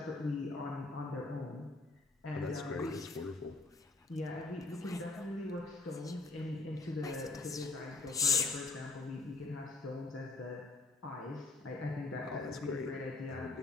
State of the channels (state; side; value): quieter; right; 3.3 dB